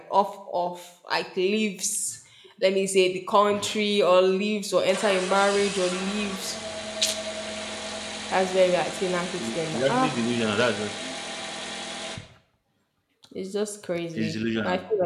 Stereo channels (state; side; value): identical; both; correlation 1.00